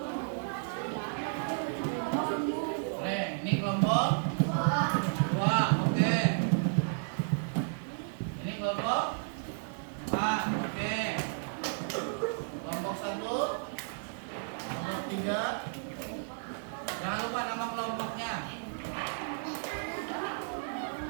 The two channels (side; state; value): left; silent; digital silence